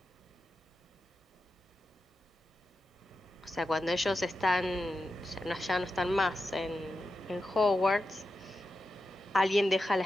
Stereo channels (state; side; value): normal; both; correlation 0.90